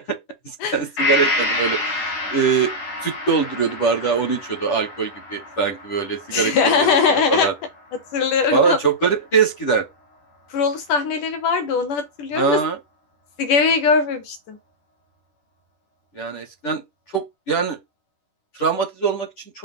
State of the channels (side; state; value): right; late; 10 ms